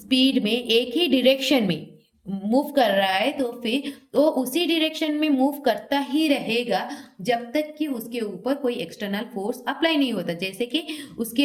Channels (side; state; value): both; identical; correlation 1.00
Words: में एक ही डायरेक्शन में मूव कर रहा है तो फिर वो उसी डायरेक्शन में मूव करता ही रहेगा जब तक कि उसके ऊपर कोई एक्सटर्नल फोर्स अप्लाई नहीं होता। जैसे कि